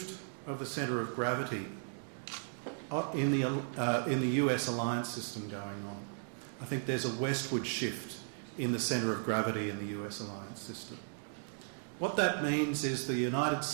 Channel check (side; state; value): left; silent; digital silence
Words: of the centre of gravity in the US alliance system going on. I think there's a westward shift in the centre of gravity in the US alliance system. What that means is the United